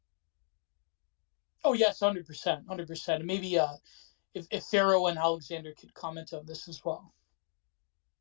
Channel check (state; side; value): silent; right; digital silence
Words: Oh yes, 100%. Maybe if Ferro and Alexander could comment on this as well.